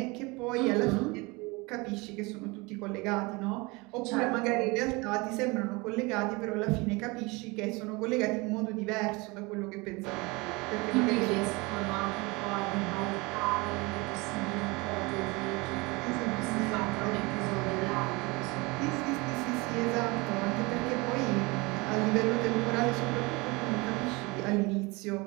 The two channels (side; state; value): left; quieter; 25.5 dB